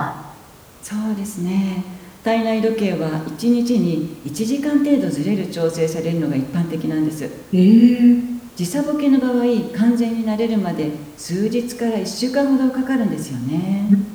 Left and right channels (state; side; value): identical; both; correlation 1.00